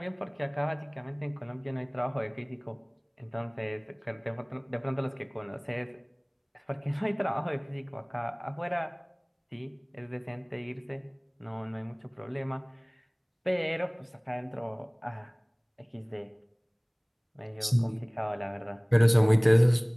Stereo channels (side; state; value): both; identical; correlation 1.00